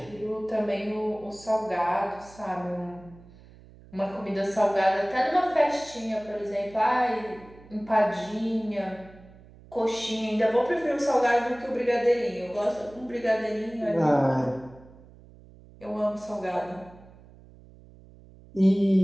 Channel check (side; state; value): right; noise; hum, 22 dB below the sound